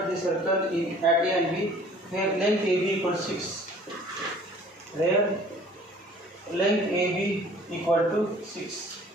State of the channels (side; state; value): both; normal; correlation 0.52